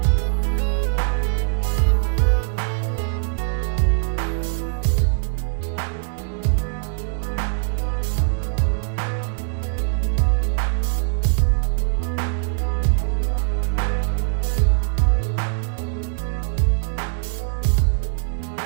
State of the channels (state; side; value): silent; left; 64 dB below the other